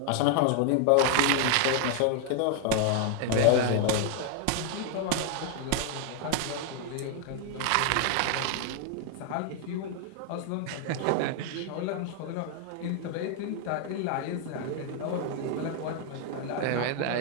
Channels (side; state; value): both; different; correlation 0.00